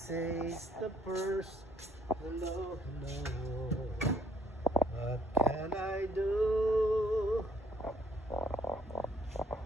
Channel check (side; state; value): both; normal; correlation 0.65